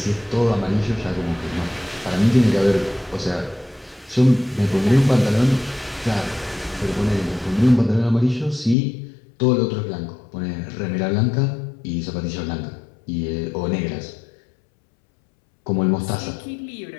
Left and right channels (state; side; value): drops out; right; at 8.8 s